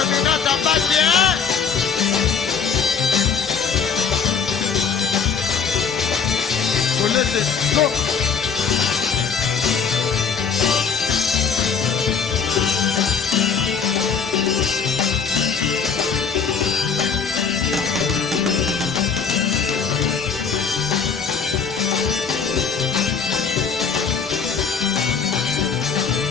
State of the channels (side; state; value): right; quieter; 6.1 dB